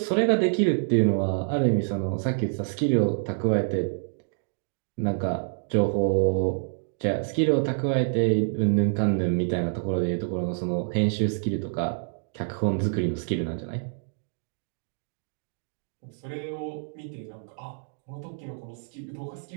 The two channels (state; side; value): silent; left; digital silence